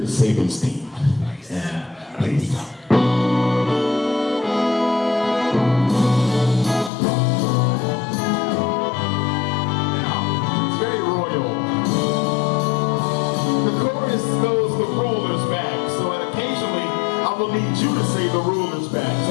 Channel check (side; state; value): right; drops out; at 6.9 s